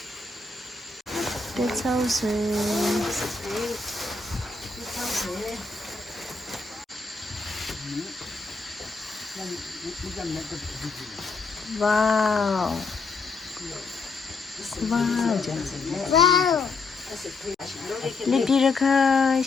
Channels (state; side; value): quieter; right; 4.0 dB